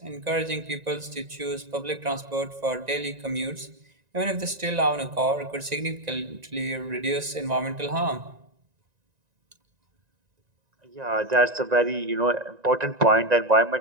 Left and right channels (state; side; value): late; left; 1.9 ms